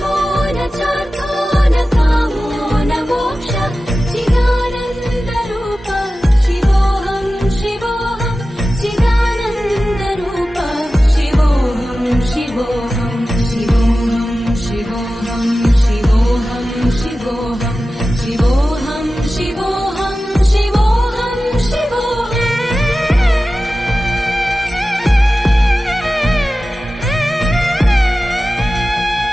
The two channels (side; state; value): both; normal; correlation 0.95